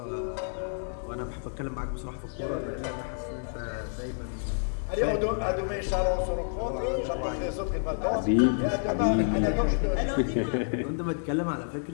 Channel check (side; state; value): right; silent; digital silence